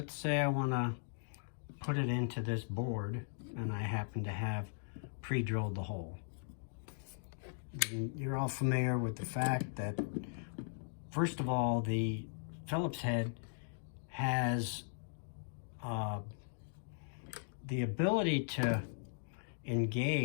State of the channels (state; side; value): silent; right; digital silence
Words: say I want to put it into this board and I happen to have pre-drilled the hole. And you're all familiar with the fact that, first of all, the Phillips head has the ability to